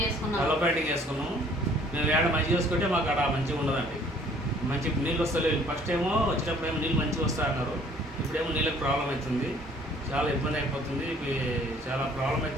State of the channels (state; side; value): normal; both; correlation 0.57